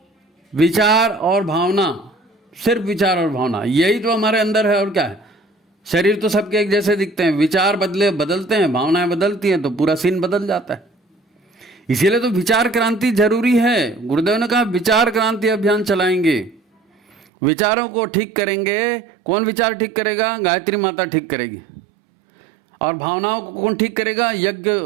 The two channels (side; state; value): left; drops out; at 17.2 s